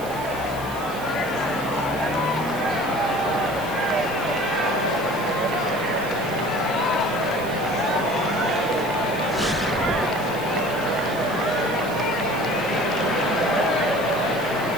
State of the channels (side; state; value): right; noise; hiss, 16 dB below the sound